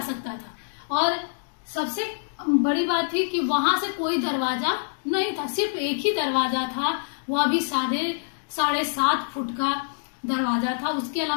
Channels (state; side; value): silent; right; digital silence